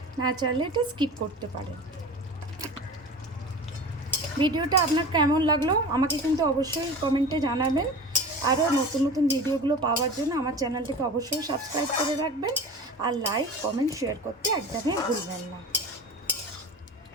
না চাইলে এটা স্কিপ করতে পারেন। ভিডিওটা আপনার কেমন লাগলো আমাকে কিন্তু অবশ্যই কমেন্টে জানাবেন। আরও নতুন নতুন ভিডিওগুলো পাওয়ার জন্য আমার চ্যানেলটিকে অবশ্যই সাবস্ক্রাইব করে রাখবেন। আর লাইক, কমেন্ট, শেয়ার করতে একদমই ভুলবেন না।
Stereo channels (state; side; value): normal; both; correlation 0.34